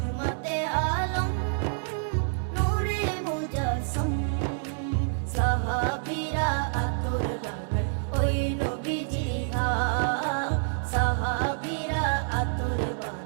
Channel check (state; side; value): silent; left; 58 dB below the other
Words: আলম নূরে মুজস্সম। সাহাবীরা আতর বানায় ওই নবীজির ঘাম, সাহাবীরা আতর